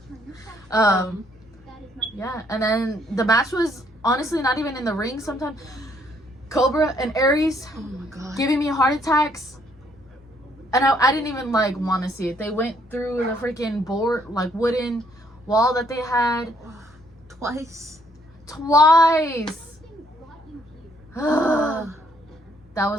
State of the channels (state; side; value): normal; both; correlation 0.68